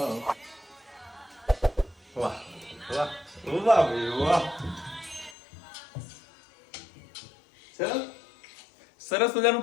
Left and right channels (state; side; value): drops out; right; at 5.4 s